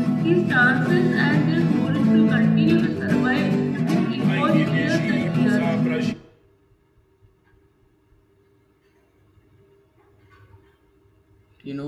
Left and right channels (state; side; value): identical; both; correlation 1.00